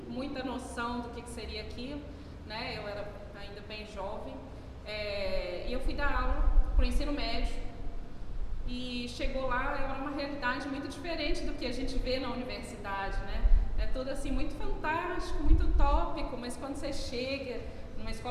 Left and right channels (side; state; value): both; identical; correlation 1.00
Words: muita noção do que seria aquilo, né, eu era ainda bem jovem, e eu fui dar aula para o ensino médio. E chegou lá, era uma realidade muito diferente do que a gente vê na universidade, né? É tudo assim muito fantástico, muito utópico, mas quando você chega numa